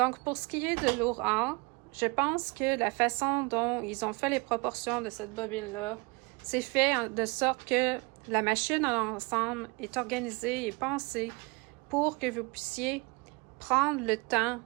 pour ce qui est de l'Aura, je pense que la façon dont ils ont fait les proportions de cette bobine-là, c'est fait de sorte que la machine en ensemble est organisée et pensée pour que vous puissiez prendre le temps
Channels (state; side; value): quieter; left; 27.9 dB